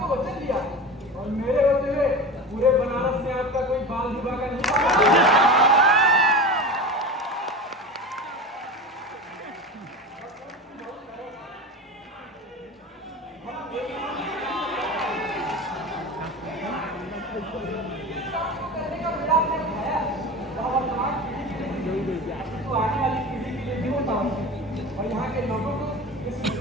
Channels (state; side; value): normal; both; correlation 0.29